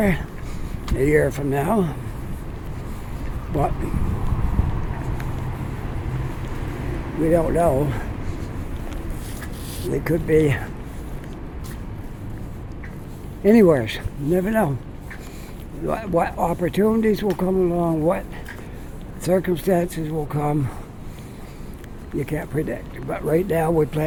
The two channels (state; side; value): identical; both; correlation 1.00